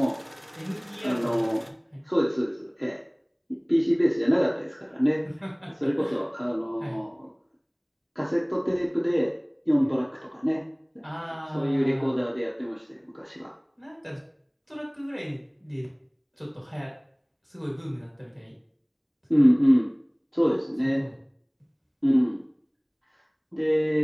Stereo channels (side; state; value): both; identical; correlation 1.00